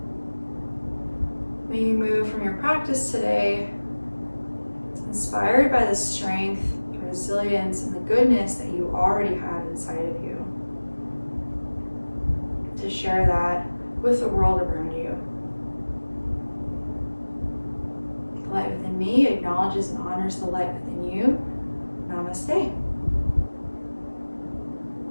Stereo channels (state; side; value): inverted; both; correlation -1.00